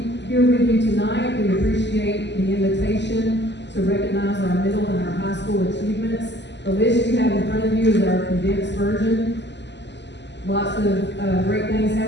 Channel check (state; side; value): late; right; 0.51 ms